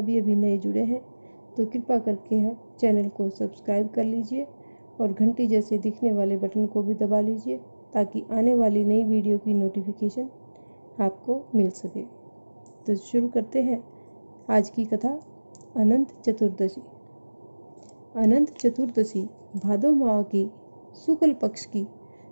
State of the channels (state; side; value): inverted; both; correlation -1.00